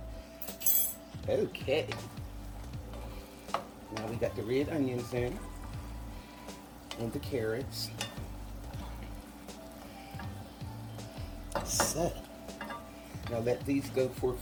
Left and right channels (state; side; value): identical; both; correlation 1.00